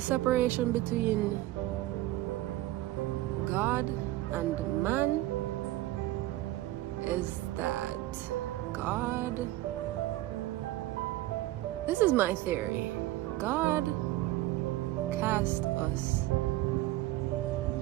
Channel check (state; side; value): quieter; left; 16.3 dB